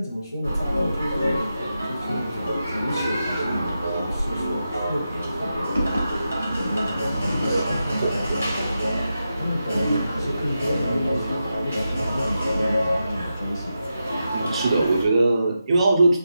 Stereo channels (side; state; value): both; inverted; correlation -0.88